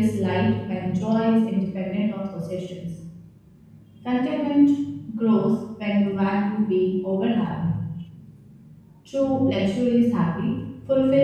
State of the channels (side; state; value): both; identical; correlation 1.00